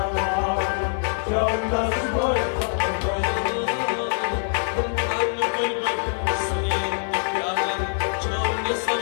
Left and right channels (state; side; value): silent; right; digital silence